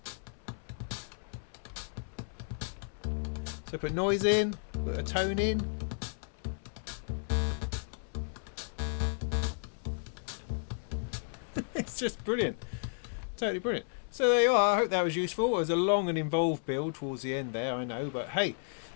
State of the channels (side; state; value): right; silent; 56 dB below the other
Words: So put noise in, put a tone in. It's just brilliant. Totally brilliant. So there you are. I hope that was useful. It was a long and involved build towards the end there, I know, but hey,